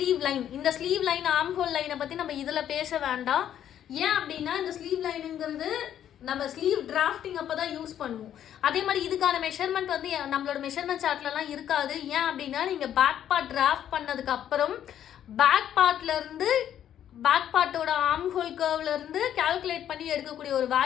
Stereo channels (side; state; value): right; quieter; 10.4 dB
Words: line. இந்த ஸ்லீவ் லைன், ஆர்ம் ஹோல் லைனை பற்றி நம்ம இதில் பேச வேண்டாம். ஏன் அப்படின்னா, இந்த ஸ்லீவ் லைனுங்கிறது நம்ம ஸ்லீவ் டிராஃப்டிங் அப்போ தான் யூஸ் பண்ணுவோம். அதே மாதிரி இதுக்கான மெஷர்மெண்ட் வந்து நம்மளோட மெஷர்மெண்ட் சார்ட்லலாம் இருக்காது. ஏன் அப்படின்னா, நீங்கள் பேக் பார்ட் டிராஃப்ட் பண்ணதுக்கு அப்புறம் பேக் பார்ட்டோட ஆர்ம் ஹோல் கர்வ்லேருந்து கால்குலேட் பண்ணி எடுக்கக்கூடிய ஒரு